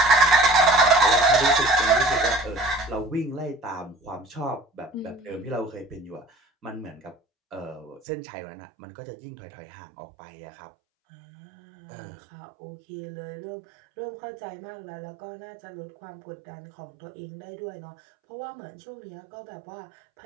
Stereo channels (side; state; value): left; drops out; at 8.0 s